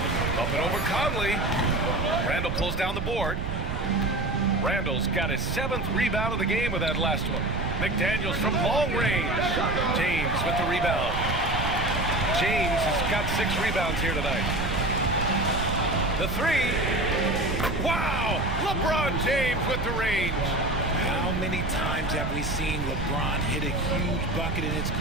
Up and over Conley. Randall pulls down the board. Randall's got his 7th rebound of the game with that last one. McDaniels from long range. James with the rebound. James has got 6 rebounds here tonight. The 3. Wow! LeBron James with the range. How many times have we seen LeBron hit a huge bucket in his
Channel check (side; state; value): right; noise; rumble, 3 dB below the sound